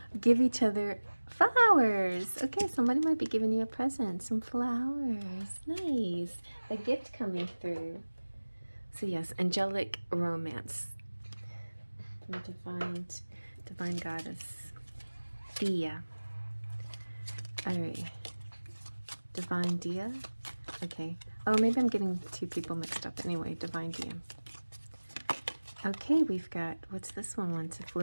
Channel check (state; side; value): inverted; both; correlation -1.00